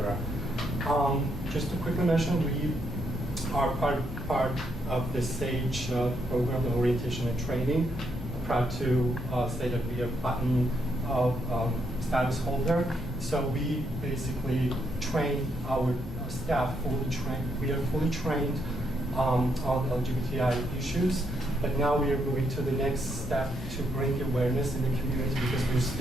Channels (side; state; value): both; normal; correlation 0.76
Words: Just to quickly mention, we are part of the SAGE program, orientation and training. I'm proud to say that we are platinum status holder. So we basically train our staff, we are fully trained on LGBTI issues, but now we are moving to the next step to bring awareness in the community, because we're